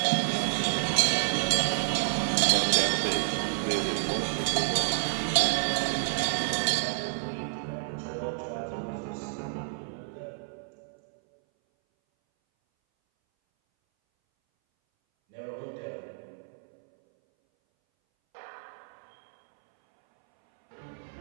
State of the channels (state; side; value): silent; left; 58 dB below the other